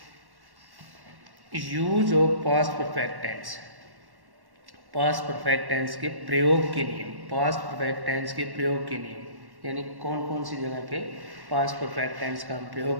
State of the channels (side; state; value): left; late; 1.1 ms